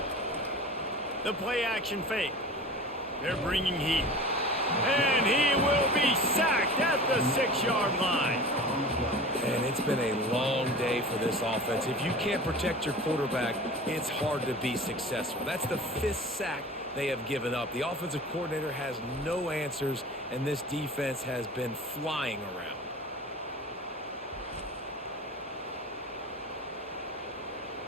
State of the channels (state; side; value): normal; both; correlation 0.37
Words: The play action fake. They're bringing heat. And he will be sacked at the 6-yard line. And it's been a long day for this offense. If you can't protect your quarterback, it's hard to be successful. That's the 5th sack they have given up. The offensive coordinator has no answers, and this defense has been flying around.